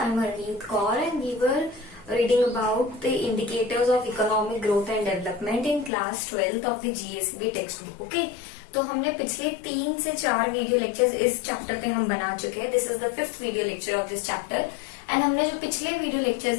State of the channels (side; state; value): right; drops out; at 5.9 s